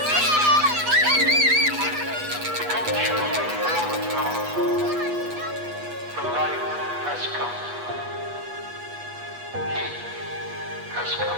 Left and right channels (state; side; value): late; left; 8.2 ms